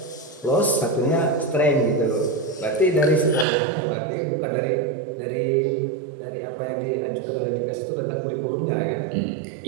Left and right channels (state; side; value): drops out; left; at 3.5 s